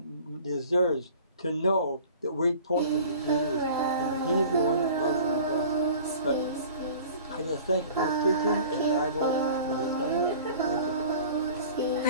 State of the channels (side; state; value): both; inverted; correlation -0.45